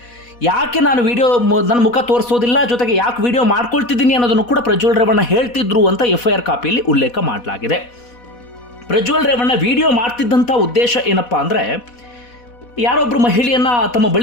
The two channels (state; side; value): late; right; 4.1 ms